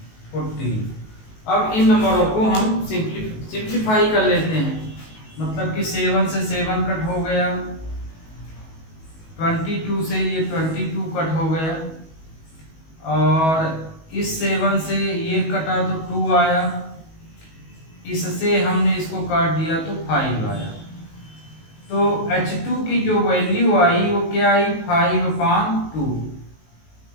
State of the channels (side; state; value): right; late; 19 ms